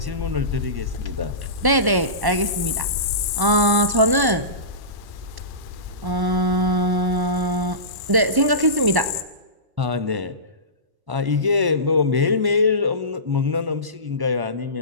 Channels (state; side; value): late; left; 1.1 ms